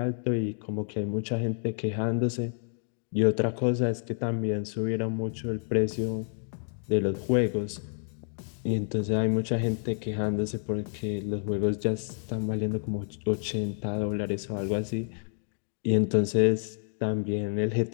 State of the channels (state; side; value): silent; right; 58 dB below the other